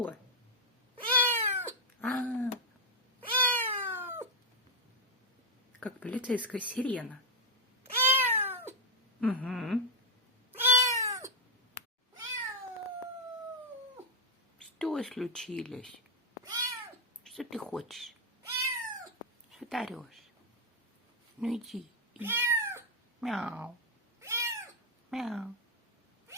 Как полицейская сирена. Угу. Что случилось? Что ты хочешь? Что ты орешь? Ну иди. Мяу. Мяу.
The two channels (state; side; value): normal; both; correlation 0.01